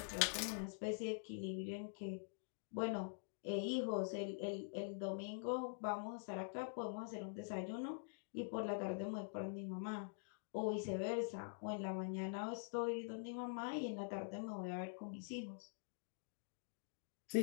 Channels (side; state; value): right; silent; digital silence